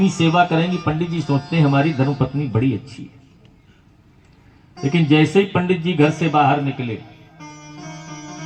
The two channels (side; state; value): both; identical; correlation 1.00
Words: सेवा करेंगी। पंडित जी सोचते हैं हमारी धर्मपत्नी बड़ी अच्छी है। लेकिन जैसे ही पंडित जी घर से बाहर निकले,